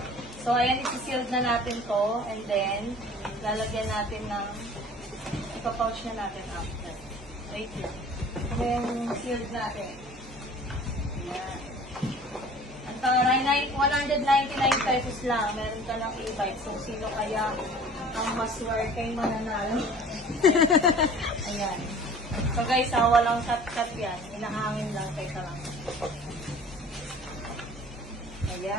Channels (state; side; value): noise; right; hum, 20 dB below the sound